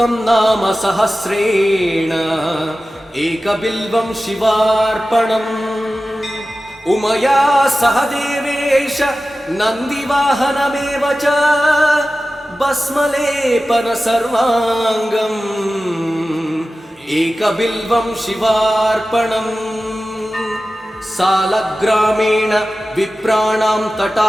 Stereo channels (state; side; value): normal; both; correlation 0.95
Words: नाम सहस्रेण एकबिल्वं शिवार्पणम् उमया सह देवेश नन्दिवाहनमेव च भस्मलेपन सर्वाङ्गम् एकबिल्वं शिवार्पणम् सालग्रामेण विप्राणां